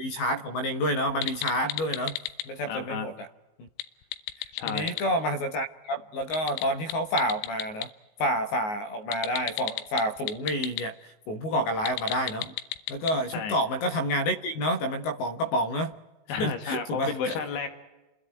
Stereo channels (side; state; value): right; late; 19 ms